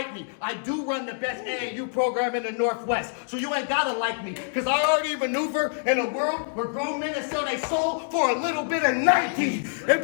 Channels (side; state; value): right; silent; digital silence